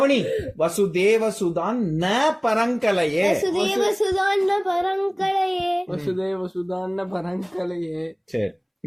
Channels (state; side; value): identical; both; correlation 1.00